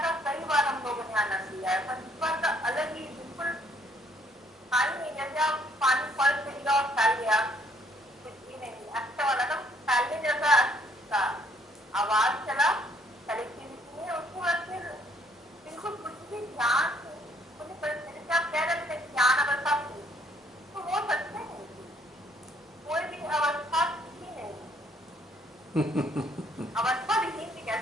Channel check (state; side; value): normal; both; correlation 0.66